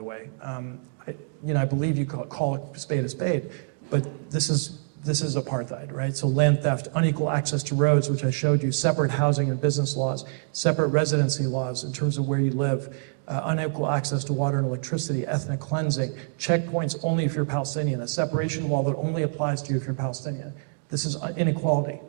way. I believe you call a spade, but this is apartheid, right? So land theft, unequal access to roads, which I showed you, separate housing and business laws, separate residency laws in terms of where you live, unequal access to water and electricity, ethnic cleansing, checkpoints only if you're Palestinian, a separation wall that only applies to you if you're Palestinian. This is inequality.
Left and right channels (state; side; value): silent; left; digital silence